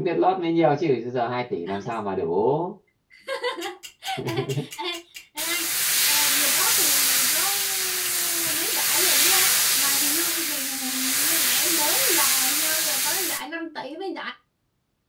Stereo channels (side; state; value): both; identical; correlation 1.00